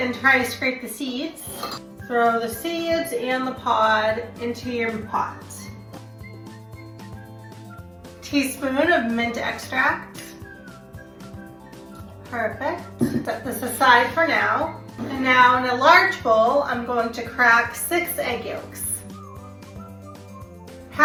and try to scrape the seeds. Throw the seeds and the pod into your pot. Teaspoon of mint extract. Perfect. Set this aside for now. And now in a large bowl, I'm going to crack 6 egg yolks.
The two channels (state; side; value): identical; both; correlation 1.00